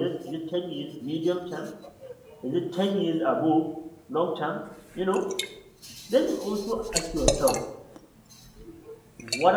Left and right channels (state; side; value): identical; both; correlation 1.00